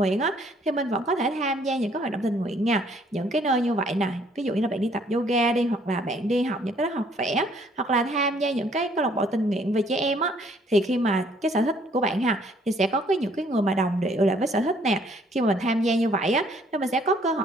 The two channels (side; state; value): both; normal; correlation 0.63